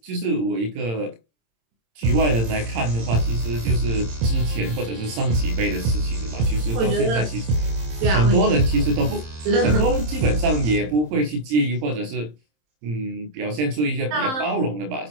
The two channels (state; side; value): late; left; 26 ms